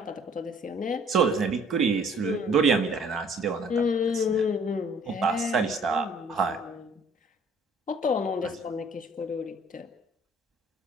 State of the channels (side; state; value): both; normal; correlation 0.56